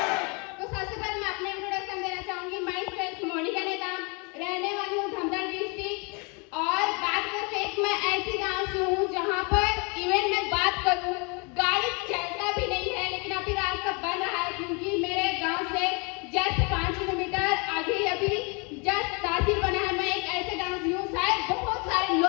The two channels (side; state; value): right; quieter; 31.8 dB